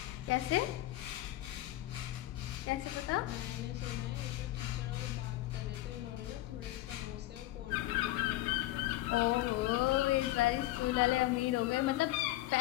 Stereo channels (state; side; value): quieter; right; 16.5 dB